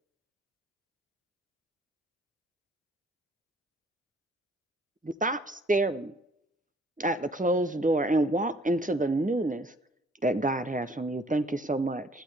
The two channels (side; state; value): both; normal; correlation 0.59